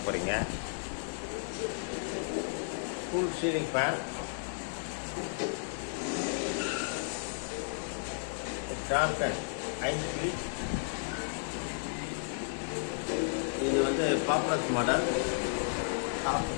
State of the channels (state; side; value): silent; right; digital silence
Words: போகிறீங்க. Full ceiling fan, Crompton 5 feet. இது வந்து பாப்புலர் மாடல்,